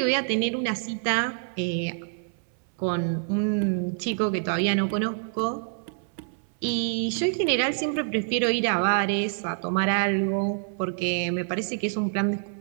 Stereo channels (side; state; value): left; silent; 60 dB below the other